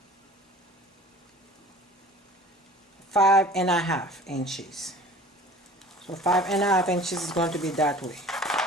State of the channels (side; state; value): both; normal; correlation 0.44